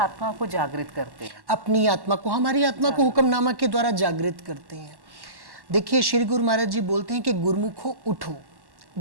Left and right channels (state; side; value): late; left; 1.1 ms